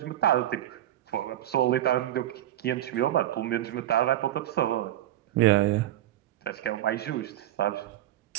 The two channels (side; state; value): left; quieter; 13.3 dB